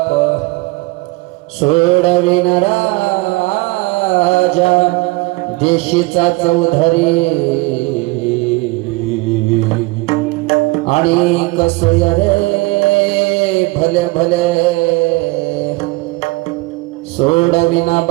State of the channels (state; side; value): quieter; left; 23.5 dB